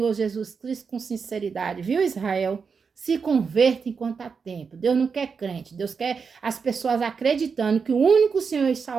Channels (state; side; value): quieter; left; 5.6 dB